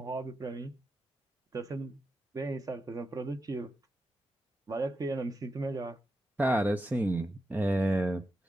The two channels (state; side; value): normal; both; correlation 0.88